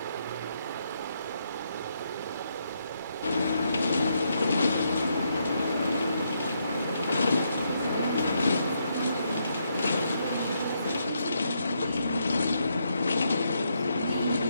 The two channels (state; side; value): inverted; both; correlation -0.78